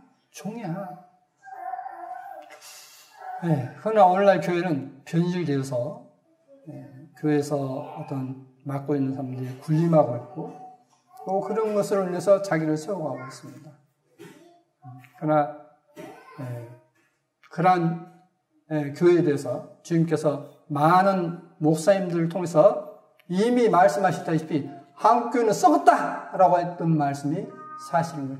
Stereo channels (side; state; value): both; identical; correlation 1.00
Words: 종이야. 그러나 오늘날 교회는 변질되어서 교회에서 어떤 맡고 있는 사람들이 군림하고 있고 또 그런 것으로 인해서 자기를 세워가고 있습니다. 그러나 그러한 교회에 대해서 주님께서 많은 목사님들을 통해서 이미 말씀하셨다시피 한국교회는 썩었다라고 했던 말씀이 사실인